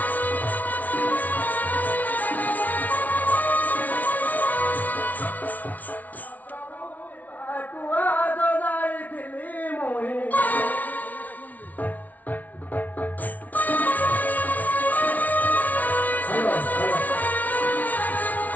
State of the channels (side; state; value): right; late; 0.075 ms